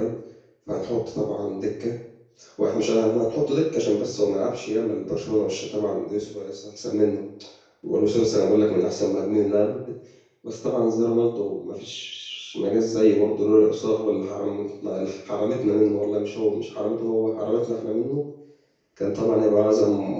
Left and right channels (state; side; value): identical; both; correlation 1.00